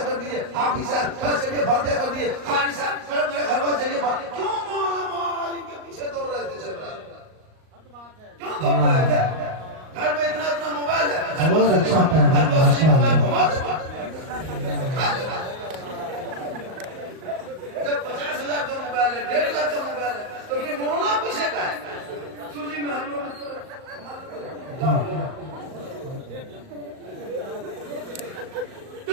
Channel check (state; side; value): late; left; 38 ms